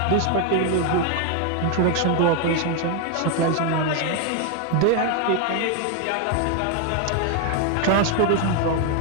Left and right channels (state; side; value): different; both; correlation 0.01